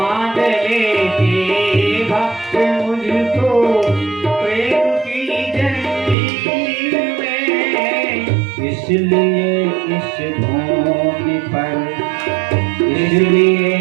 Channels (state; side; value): drops out; left; at 6.2 s